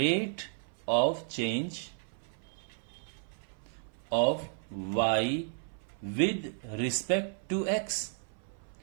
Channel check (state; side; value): silent; left; 56 dB below the other